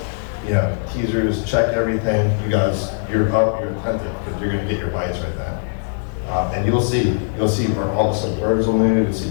teasers, check everything. You guys, you're up, you're attentive because you're gonna get your bites right then. And you'll see all of a sudden birds will move, you'll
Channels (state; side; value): silent; right; digital silence